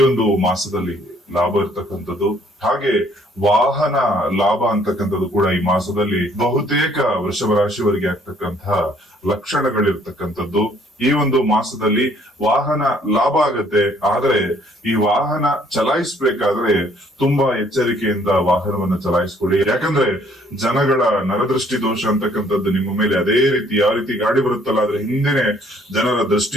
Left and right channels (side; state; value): both; normal; correlation 0.62